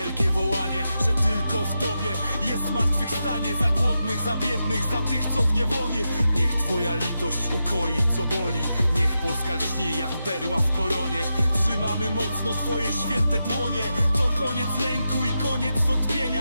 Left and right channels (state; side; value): inverted; both; correlation -0.88